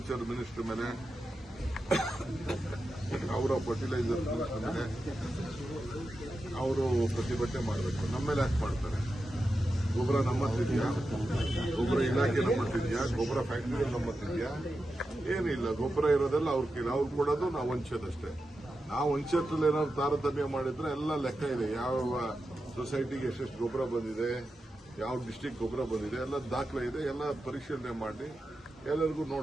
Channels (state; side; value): normal; both; correlation 0.90